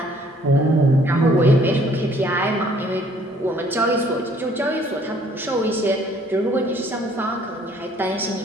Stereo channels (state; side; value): normal; both; correlation 0.60